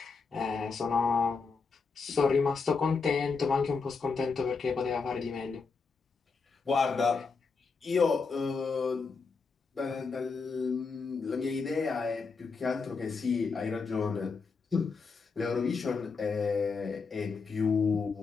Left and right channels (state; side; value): quieter; right; 4.8 dB